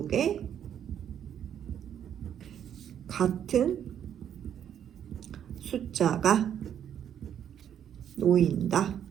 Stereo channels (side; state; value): left; quieter; 9.4 dB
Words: 같은 숫자가 놓인다.